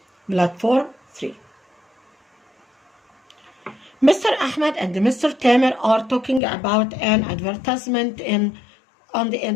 platform 3. Mr. Ahmed and Mr. Tamer are talking about an advertisement on the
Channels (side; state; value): right; drops out; at 6.4 s